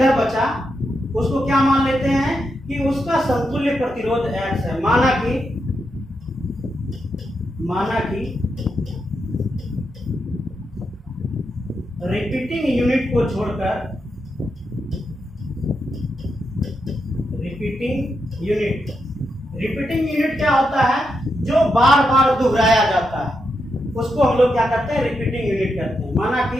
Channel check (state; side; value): normal; both; correlation 0.84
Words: बचा उसको क्या मान लेते हैं कि उसका समतुल्य प्रतिरोध X है। माना कि रिपीटिंग यूनिट को छोड़कर, रिपीटिंग यूनिट क्या होता है, जो बार बार दोहराया जाता है, उसको हम लोग क्या करते हैं, रिपीटिंग यूनिट कहते हैं। माना कि